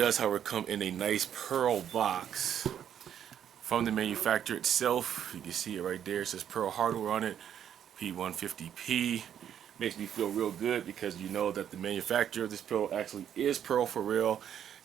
however, come in a nice pearl box from the manufacturer itself. You can see it right there. It says Pearl hardware on it. P150P. Makes me feel real good because you know that the manufacturer of this pedal actually is Pearl for real,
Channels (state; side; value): quieter; left; 9.4 dB